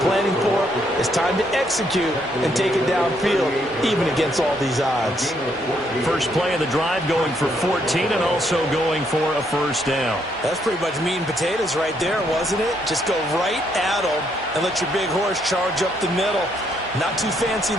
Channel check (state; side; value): normal; both; correlation 0.73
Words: for. It's time to execute and take it downfield, even against all these odds. First play of the drive going for 14 and also going for a first down. That's pretty much meat and potatoes right there, wasn't it? Just go right at them and let your big horse charge up the middle. Not too fancy